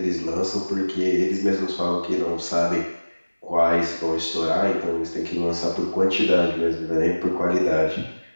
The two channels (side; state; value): both; inverted; correlation -1.00